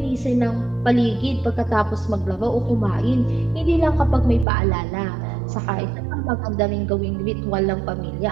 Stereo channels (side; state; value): left; drops out; at 4.5 s